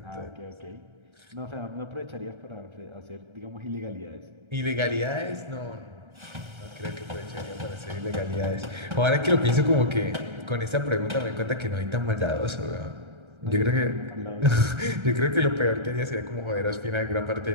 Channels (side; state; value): left; late; 1.3 ms